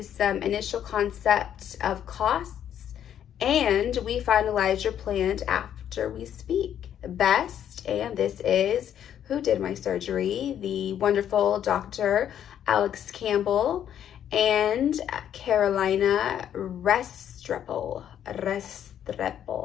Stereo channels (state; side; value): quieter; right; 9.9 dB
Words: some initial concept of costs, and we finalize your plan after we speak. Best, and this is who did my surgery, the wonderful Dr. Alex Campbell and Carolina Restrepo.